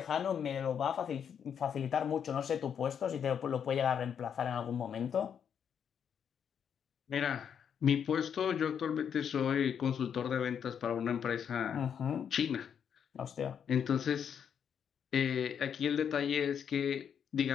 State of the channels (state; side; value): quieter; right; 8.0 dB